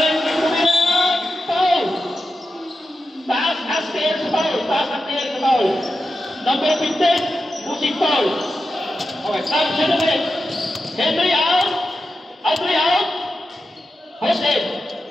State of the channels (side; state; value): both; normal; correlation 0.90